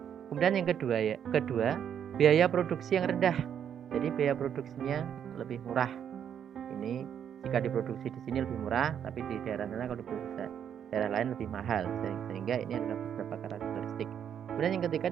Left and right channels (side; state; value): left; quieter; 8.7 dB